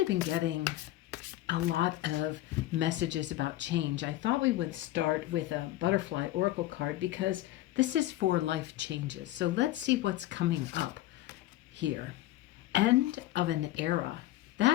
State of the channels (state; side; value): quieter; right; 15.4 dB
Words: been getting a lot of messages about change, I thought we would start with a butterfly oracle card because this is for life changes. So let's see what's coming up here. End of an era.